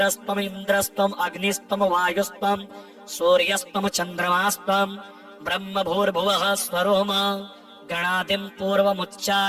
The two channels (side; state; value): both; identical; correlation 1.00